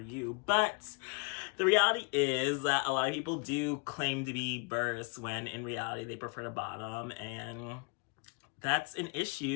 But the reality is that a lot of people do claim to be verse when in reality they prefer to bottom, and that's an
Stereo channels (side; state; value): right; quieter; 33.9 dB